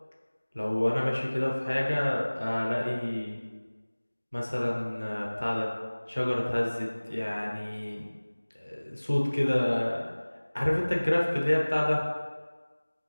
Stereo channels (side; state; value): both; inverted; correlation -1.00